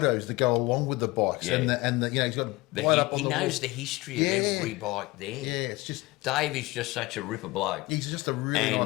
that go along with the bikes and the he's got right up on he the knows wall. The history of every bike there. Yeah, it's just Dave is just such a ripper bloke. He's just a really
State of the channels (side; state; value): right; quieter; 21.1 dB